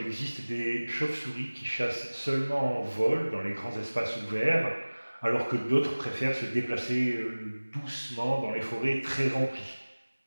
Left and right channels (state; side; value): inverted; both; correlation -1.00